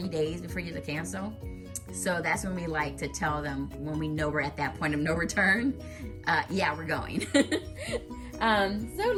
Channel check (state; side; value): identical; both; correlation 1.00